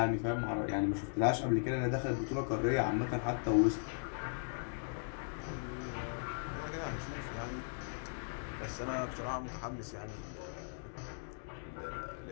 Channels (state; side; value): silent; right; digital silence